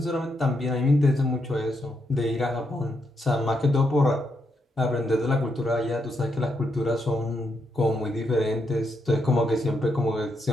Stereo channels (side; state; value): both; normal; correlation 0.80